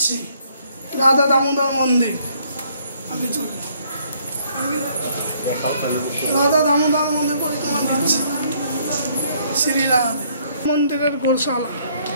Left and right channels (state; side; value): inverted; both; correlation -0.66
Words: রাধা দামোদর মন্দির। আগে চলুন, রাধা দামোদর মন্দির পরিক্রমা দিচ্ছি শ্রী রাধে। মন্দিরের গোশালা,